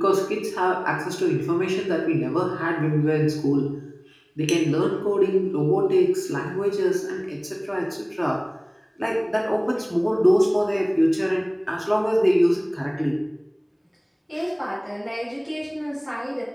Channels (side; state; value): both; identical; correlation 1.00